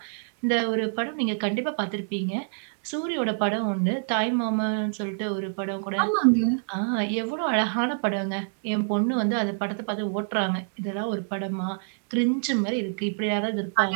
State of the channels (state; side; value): silent; left; digital silence